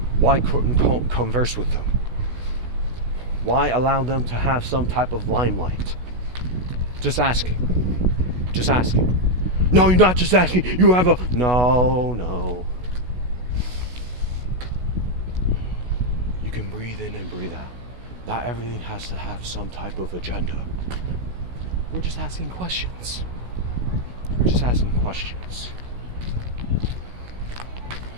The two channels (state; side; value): late; left; 16 ms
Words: couldn't converse with them? Why allow them to have some type of limelight? Just asking. Just asking. No, you're not just asking. You have a... No. You can breathe in and breathe out. Not everything has to have some type of agenda. We're just asking questions. We're just asking questions.